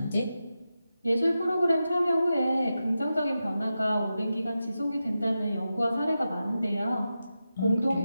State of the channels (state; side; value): inverted; both; correlation -0.91